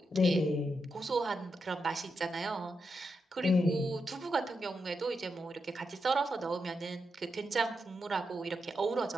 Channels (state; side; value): normal; both; correlation 0.86